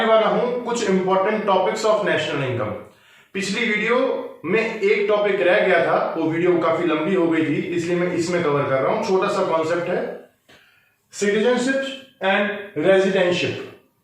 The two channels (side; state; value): both; identical; correlation 1.00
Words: वाला हूं कुछ important topics of national income. पिछली वीडियो में एक टॉपिक रह गया था, वो वीडियो काफी लंबी हो गई थी, इसलिए मैं इसमें कवर कर रहा हूं। छोटा सा कॉन्सेप्ट है सिटीजनशिप एंड रेजिडेंशिप।